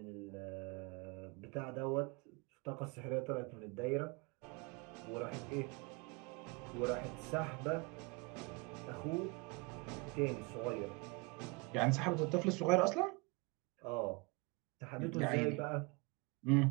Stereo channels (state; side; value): quieter; left; 28.1 dB